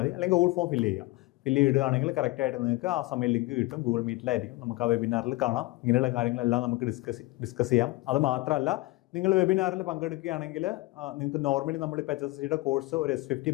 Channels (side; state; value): right; quieter; 20.9 dB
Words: അല്ലെങ്കിൽ ഗൂഗിൾ ഫോം ഫില്ല് ചെയ്യുക. ഫില്ല് ചെയ്യുകയാണെങ്കിൽ കറക്റ്റായിട്ട് നിങ്ങൾക്ക് ആ സമയം ലിങ്ക് കിട്ടും. ഗൂഗിൾ മീറ്റിലായിരിക്കും, നമുക്ക് ആ വെബിനാറിൽ കാണാം. ഇങ്ങനെയുള്ള കാര്യങ്ങളെല്ലാം നമുക്ക് ഡിസ്കസ് ചെയ്യാം. അത് മാത്രമല്ല, നിങ്ങൾ വെബിനാറിൽ പങ്കെടുക്കുകയാണെങ്കിൽ നിങ്ങൾക്ക് നോർമലി നമ്മളിപ്പോൾ HSCയുടെ കോഴ്സ് ഒരു S50